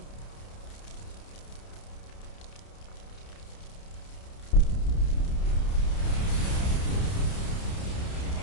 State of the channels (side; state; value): right; late; 30 ms